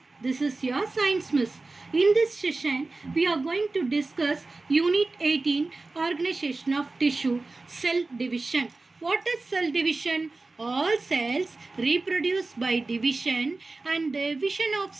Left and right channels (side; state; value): left; quieter; 3.4 dB